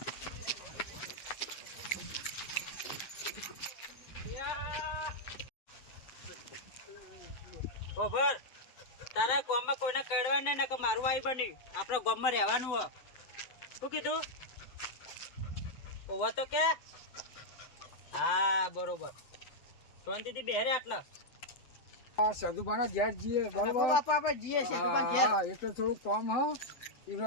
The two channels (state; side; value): late; right; 8.0 ms